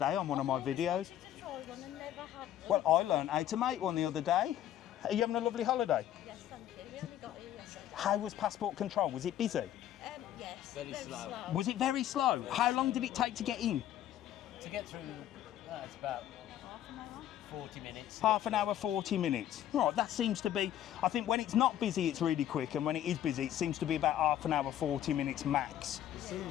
on one of my videos. Well, I learned how to make one the other day. Are you having a lovely holiday? Yes, thank you. We only got here yesterday. How was passport control? Was it busy? Yes. Very slow. Was it very slow? How long did it take to get in? To get through, it's about 40 minutes. Half an hour, 40 minutes. Right, that seems to be, I think when it's not busy, it's really quick, and when it is busy, it seems to be about half an hour, 40 minutes max. It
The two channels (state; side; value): quieter; right; 11.7 dB